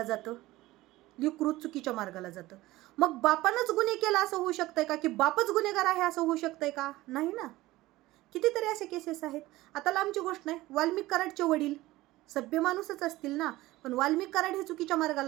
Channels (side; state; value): left; quieter; 17.9 dB